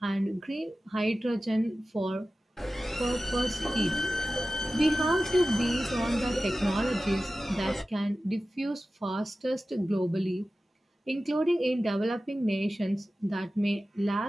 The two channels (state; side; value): normal; both; correlation 0.95